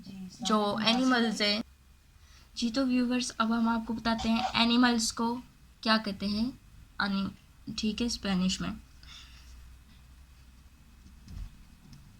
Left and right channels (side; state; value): both; identical; correlation 1.00